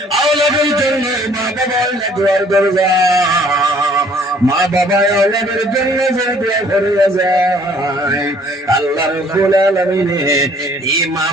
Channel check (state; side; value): normal; both; correlation 0.58